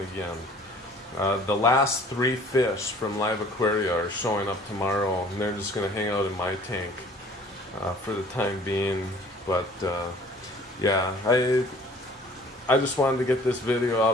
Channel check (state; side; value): normal; both; correlation 0.52